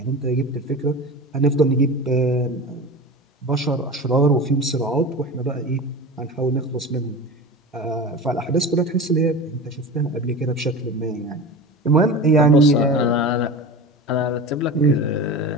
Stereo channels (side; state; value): both; normal; correlation 0.31